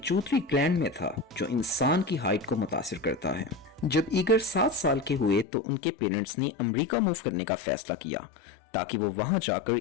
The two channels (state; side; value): drops out; right; at 5.5 s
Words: ग्लैंड में था जो इंसान की हाइट को मुतासिर करता है। जब ईगर 7 साल के हुए तो उनके पेरेंट्स ने अमेरिका मूव करने का फैसला किया ताकि वो वहां